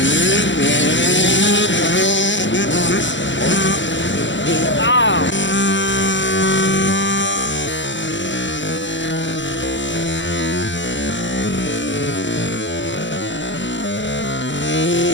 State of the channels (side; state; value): right; late; 0.54 ms